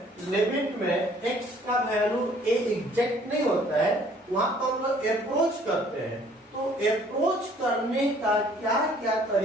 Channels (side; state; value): both; normal; correlation 0.58